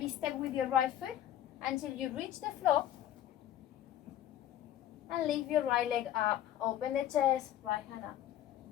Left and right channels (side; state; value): right; quieter; 11.8 dB